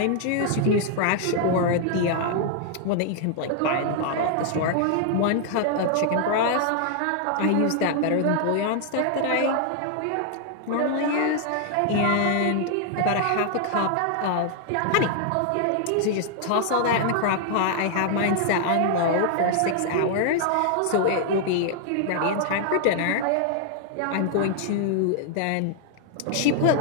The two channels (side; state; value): both; different; correlation 0.00